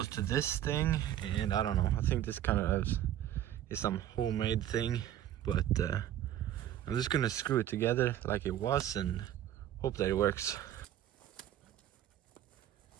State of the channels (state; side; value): quieter; left; 11.8 dB